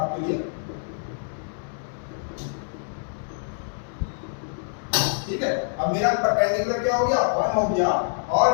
लिए। ठीक है, अब मेरा परपेंडिकुलर क्या हो गया 1 हो गया,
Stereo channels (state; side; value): silent; right; 61 dB below the other